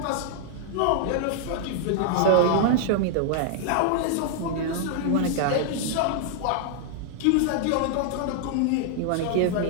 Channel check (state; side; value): different; both; correlation 0.00